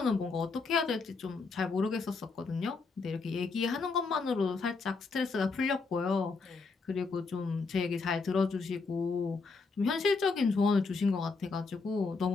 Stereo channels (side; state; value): right; quieter; 4.3 dB